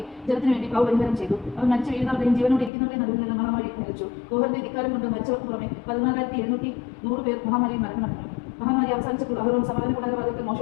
ജനത്തിന് വേണ്ടി പാപപരിഹാരം ചെയ്തു. അവൻ മരിച്ചു വീഴുന്നവരുടെയും ജീവനോട് ഇരിക്കുന്നവരുടെയും നടുവിൽ നിന്ന് മഹാമാരി നിലച്ചു. കോഹറിന്റെ ധിക്കാരം കൊണ്ട് മരിച്ചവർക്ക് പുറമെ 14,700 പേർ മഹാമാരിയിൽ മരണമടഞ്ഞു. മഹാമാരി അവസാനിച്ചപ്പോൾ അഹരോൻ സമാഗമന കൂടാര വാതിൽക്കൽ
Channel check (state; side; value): drops out; right; at 2.7 s